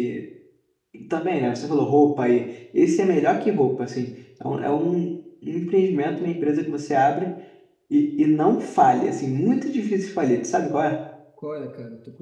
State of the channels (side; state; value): both; identical; correlation 1.00